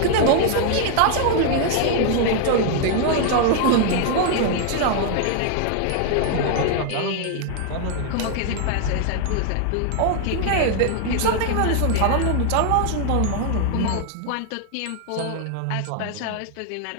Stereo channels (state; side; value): different; both; correlation 0.00